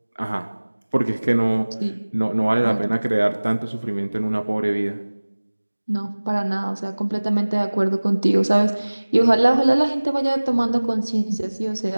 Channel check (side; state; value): both; inverted; correlation -1.00